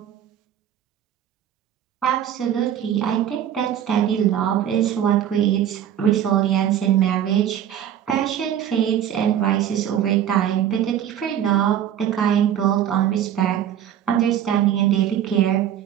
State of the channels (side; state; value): left; quieter; 10.3 dB